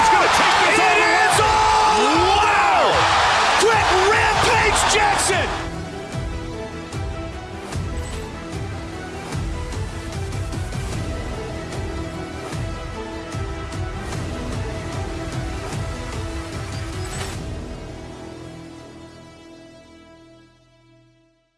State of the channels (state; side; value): identical; both; correlation 1.00